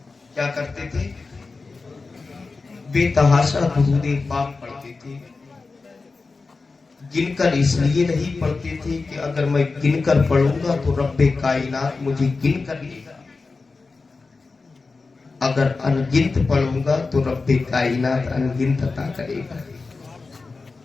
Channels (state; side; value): quieter; right; 4.0 dB